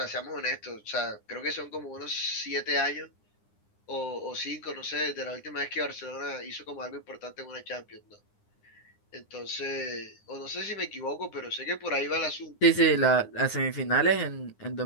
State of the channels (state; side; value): late; right; 9.8 ms